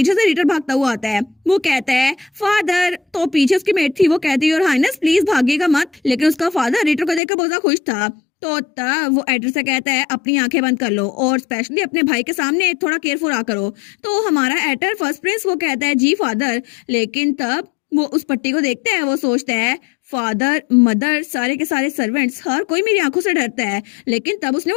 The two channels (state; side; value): drops out; right; at 7.2 s